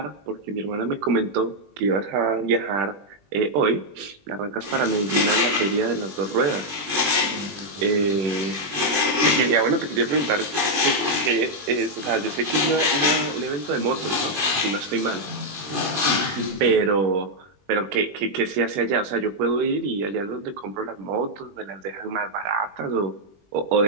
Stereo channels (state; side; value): late; left; 20 ms